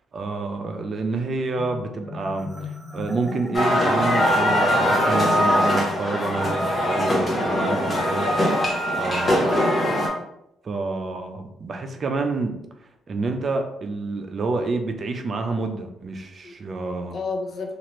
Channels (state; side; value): normal; both; correlation 0.78